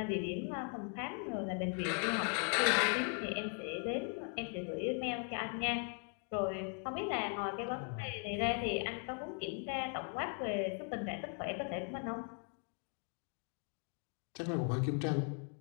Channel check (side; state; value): right; quieter; 38.5 dB